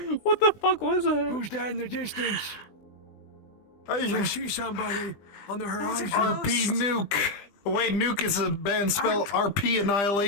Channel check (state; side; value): late; right; 20 ms